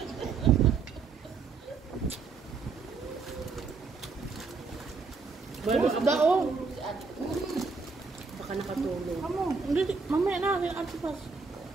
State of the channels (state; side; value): quieter; left; 4.7 dB